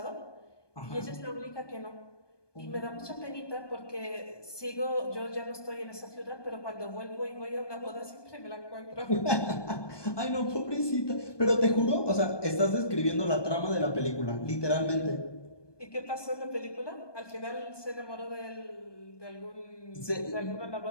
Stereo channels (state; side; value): late; right; 1.2 ms